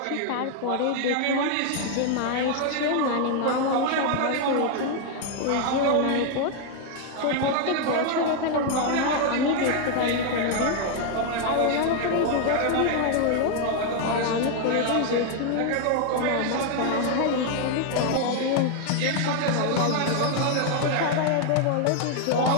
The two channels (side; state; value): both; different; correlation 0.00